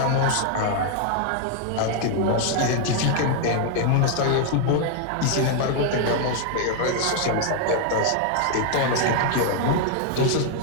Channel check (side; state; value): both; different; correlation 0.00